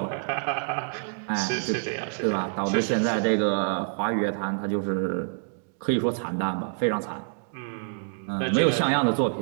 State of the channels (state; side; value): silent; left; digital silence